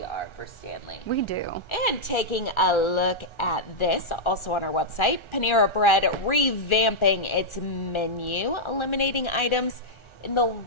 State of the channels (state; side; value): late; right; 1.4 ms